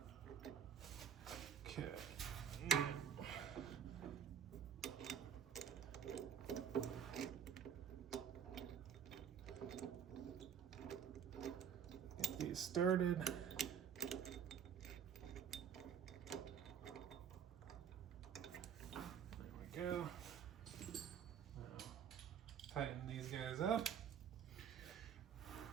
Okay. Get these started. There we go. Now, tighten these guys up.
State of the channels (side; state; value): left; quieter; 8.3 dB